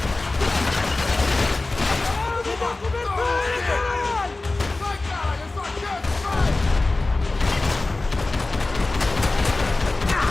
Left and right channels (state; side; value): quieter; right; 3.2 dB